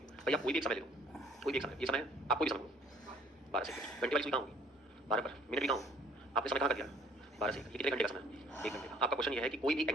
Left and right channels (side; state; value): both; normal; correlation 0.57